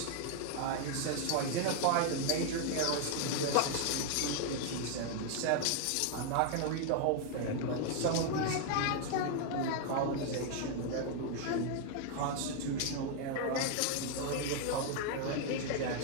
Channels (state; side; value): different; both; correlation 0.00